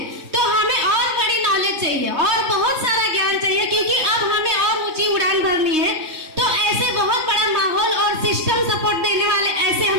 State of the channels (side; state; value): left; late; 3.2 ms